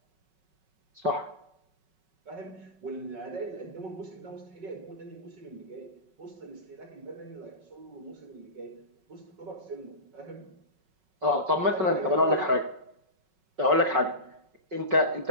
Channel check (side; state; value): left; late; 5.4 ms